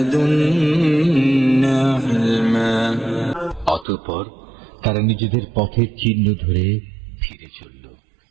علما। অতঃপর তারা নিজেদের পথের চিহ্ন ধরে ফিরে চলল।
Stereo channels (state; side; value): drops out; left; at 3.9 s